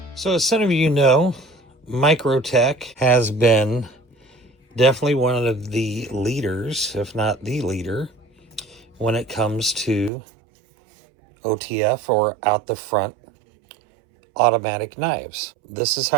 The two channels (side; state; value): left; drops out; at 10.1 s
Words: So as some of you know, MICROTECH has been definitely one of the leaders, if not the leader, when it comes to OTF, or out the front automatic knives. This is